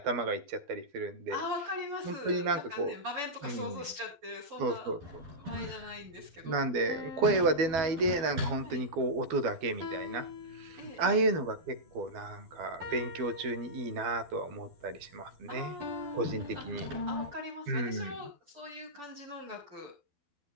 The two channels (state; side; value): late; left; 12 ms